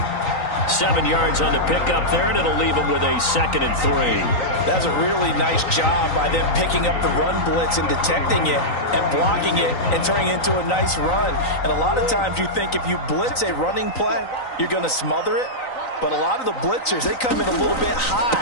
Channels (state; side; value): late; right; 3.9 ms